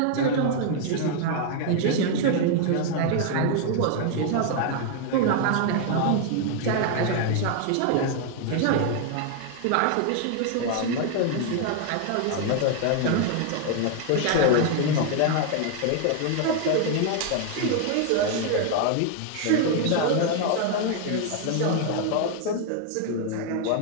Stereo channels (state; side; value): different; both; correlation 0.00